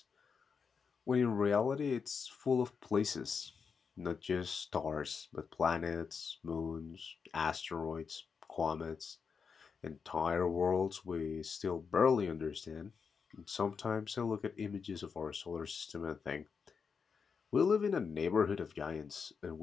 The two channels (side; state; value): right; quieter; 5.8 dB